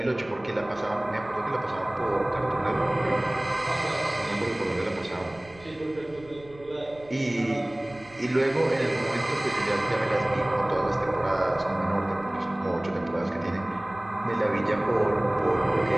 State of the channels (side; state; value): right; noise; rumble, 23 dB below the sound